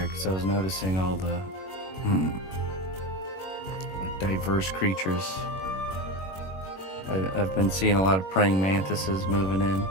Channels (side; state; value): right; late; 21 ms